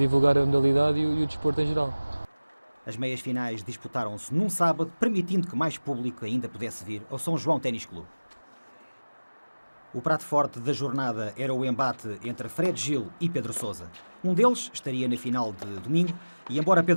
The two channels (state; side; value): inverted; both; correlation -1.00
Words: a modalidade e o desporto em geral. As meias finais disputaram-se num sábado, permitindo que mais público ainda pudesse vir ao São João Ténis Clube. O prato forte da jornada era o embate entre Fred Gil e Pedro Sousa. Um deles estaria na final de domingo e, embora